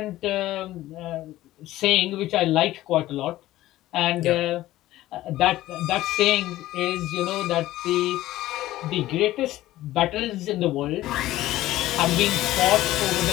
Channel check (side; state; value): right; quieter; 15.6 dB